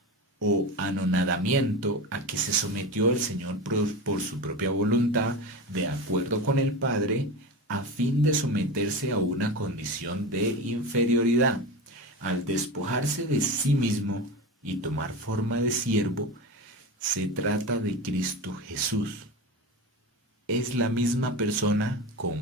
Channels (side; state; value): both; normal; correlation 0.25